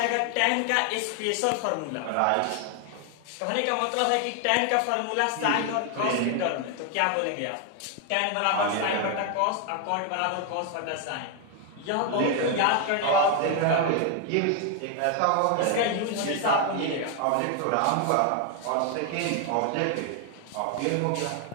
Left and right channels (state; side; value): different; both; correlation 0.01